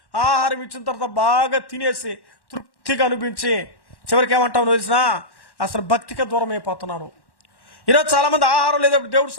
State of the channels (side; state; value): right; late; 1.1 ms